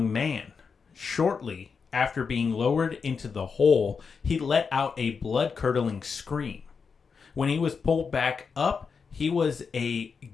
man. Shortly after being lowered into the hole, he let out a blood-curdling scream. When he was pulled back up, he was a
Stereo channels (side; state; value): right; quieter; 5.6 dB